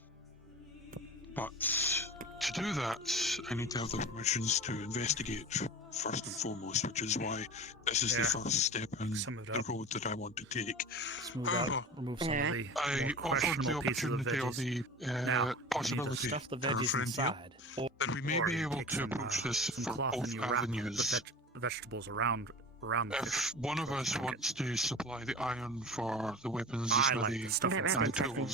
But to do that, I need to have the permissions to investigate first and foremost, which is why this is the first step in the road that I want to take. However, Remove some of the I offered the opportunity or the possibility stuff the to our veggies friend here inside, that we may be able to approach this for both avenues. The vegetables around the If one of us wants to supply the iron for the weapons, the smithy, and the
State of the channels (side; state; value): both; normal; correlation 0.34